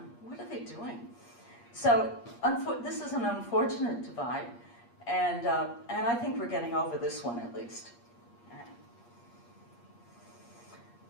what are they doing? So this is an unfortunate divide, and I think we're getting over this one at least.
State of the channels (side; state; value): right; late; 8.5 ms